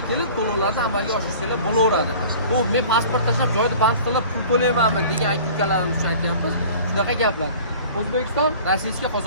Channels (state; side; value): inverted; both; correlation -0.44